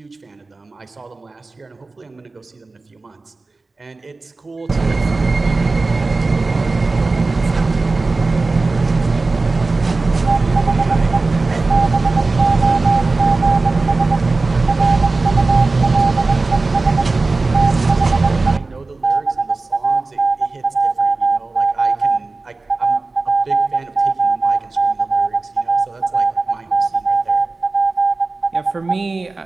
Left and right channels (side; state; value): left; quieter; 3.6 dB